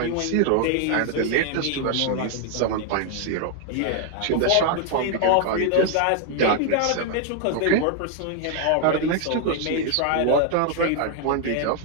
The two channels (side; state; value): both; different; correlation 0.00